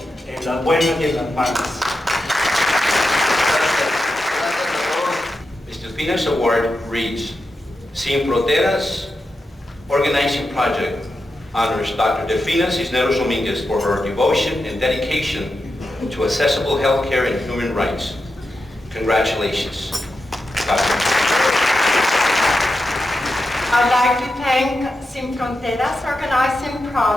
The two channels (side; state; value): both; normal; correlation 0.89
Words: en las buenas y en las malas. Mr. Pina's award reads, Sin Fronteras Organizing Project honors Dr. Delfina Cisneros Dominguez for her devotion and dedication to accessible health care and human rights. Congratulations, Dr. I'd like to thank Sin Fronteras Organizing